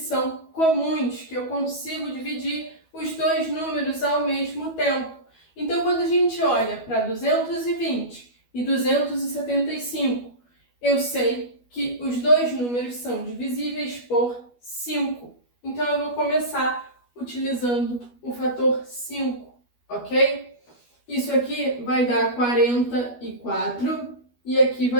comuns, que eu consigo dividir os dois números ao mesmo tempo. Então, quando a gente olha para 220 e 275, eu sei que os dois números são divisíveis por 5. Então, eu vou começar utilizando o fator 5, ok? Isso aqui vai dar 44. E aqui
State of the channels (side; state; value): right; late; 12 ms